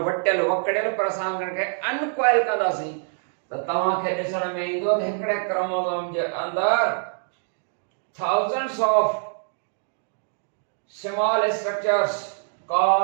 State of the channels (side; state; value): left; silent; digital silence